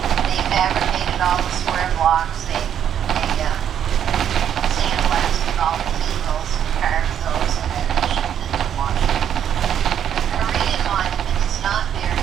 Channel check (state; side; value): quieter; left; 9.3 dB